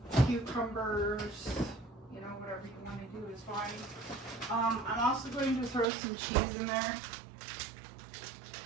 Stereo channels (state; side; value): drops out; left; at 5.9 s